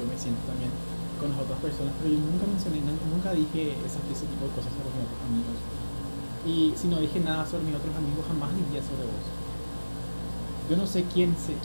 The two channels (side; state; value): both; inverted; correlation -1.00